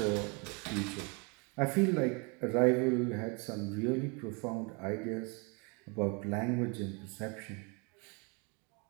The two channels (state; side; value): quieter; left; 32.0 dB